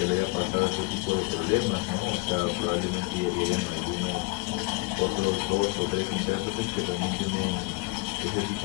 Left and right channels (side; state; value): right; quieter; 26.6 dB